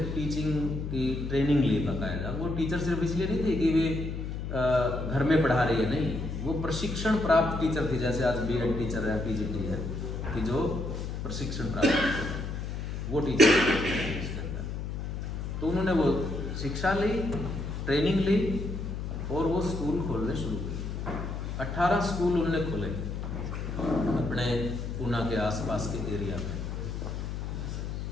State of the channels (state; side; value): noise; left; hum, 5 dB below the sound